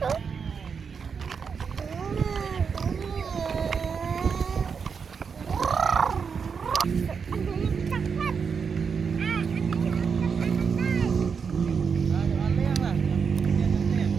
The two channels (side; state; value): left; quieter; 6.0 dB